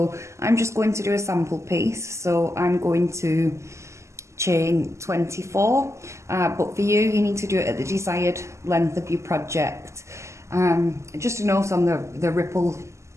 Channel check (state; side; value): late; left; 0.14 ms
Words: I'm just going to do a sample piece, so I'm going to chain 24, but for you need to do it at the desired length of your project. Just a note on the ripple